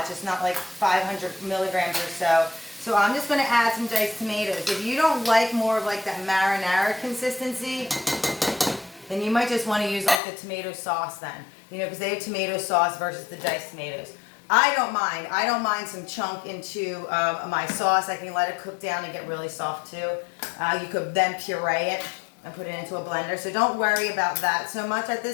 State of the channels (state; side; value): drops out; right; at 10.2 s